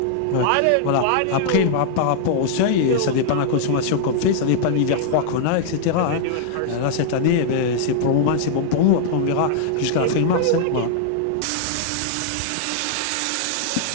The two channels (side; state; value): both; different; correlation -0.01